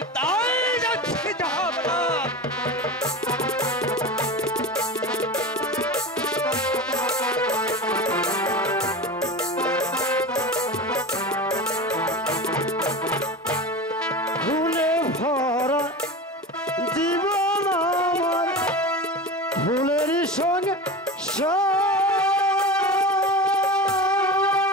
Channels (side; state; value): both; normal; correlation 0.28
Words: তাই যাচ্ছি, যাহা বলা। ভুলে ভরা জীবন আমার, ভুলেরই সঙ্গে